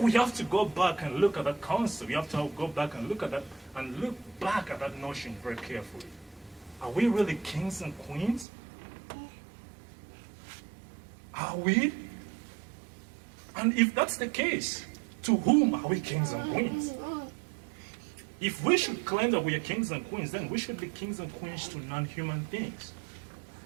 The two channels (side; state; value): left; drops out; at 8.5 s